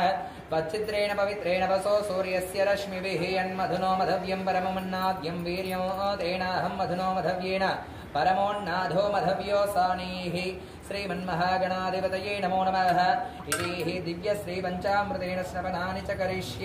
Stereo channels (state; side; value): identical; both; correlation 1.00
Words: त्वच्चित्रेण पवित्रेण वसो सूर्यस्य रश्मिभिः यन्मधुनो मधव्यं परममन्नाद्यं वीर्यो तेनाहं मधुनो मधव्येन परमोन्नाधो मधव्यो सानीः श्रीमन्महागणाधिपतये नमो नमः इति दिव्यश्रीपञ्चामृतेन स्नपनानि च